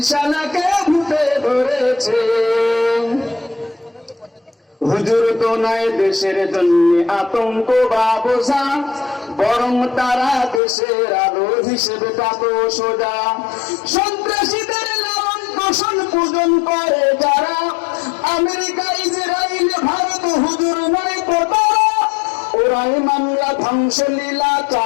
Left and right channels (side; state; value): right; drops out; at 10.6 s